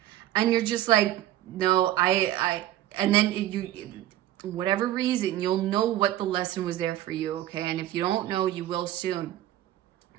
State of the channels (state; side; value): quieter; left; 13.4 dB